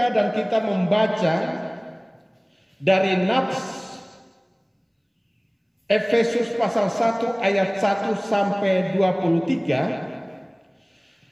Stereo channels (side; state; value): both; identical; correlation 1.00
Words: dan kita membaca dari nats Efesus pasal 1 ayat 1 sampai